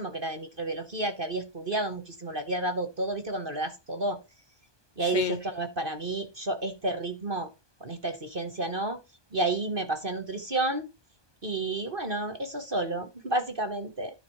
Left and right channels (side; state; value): left; late; 1.2 ms